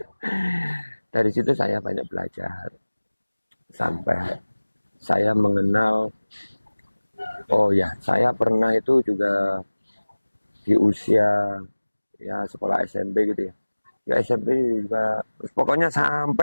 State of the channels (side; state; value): both; inverted; correlation -1.00